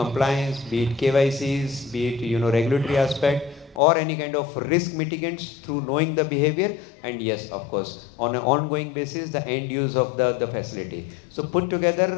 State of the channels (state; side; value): drops out; right; at 3.8 s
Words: be it KYCs, be it regulatory aspect, or any kind of risk mitigants through knowing the behavior, and yes, of course, on an ongoing basis, the end use of the facility. So put